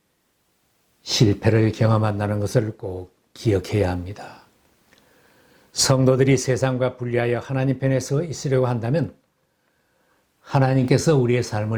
실패를 경험한다는 것을 꼭 기억해야 합니다. 성도들이 세상과 분리하여 하나님 편에 서 있으려고 한다면 하나님께서 우리의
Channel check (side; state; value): both; identical; correlation 1.00